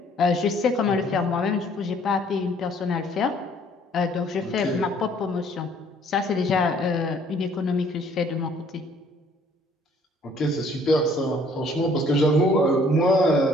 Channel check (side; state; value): both; normal; correlation 0.60